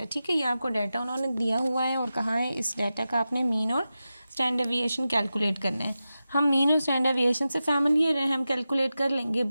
ठीक है, ये आपको डाटा उन्होंने दिया हुआ है और कहा है इस डाटा का आपने मीन और स्टैंडर्ड डेविएशन कैलकुलेट करना है। हम मीन और स्टैंडर्ड डेविएशन से फैमिलियर हैं, हम कैलकुलेट कर लेंगे,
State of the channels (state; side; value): inverted; both; correlation -0.93